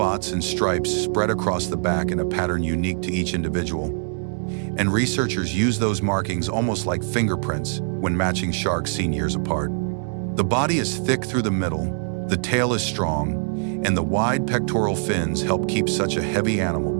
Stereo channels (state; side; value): silent; left; 62 dB below the other